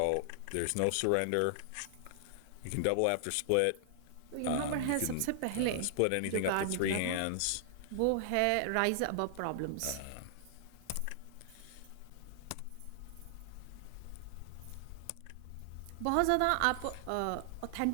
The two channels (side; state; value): both; different; correlation -0.01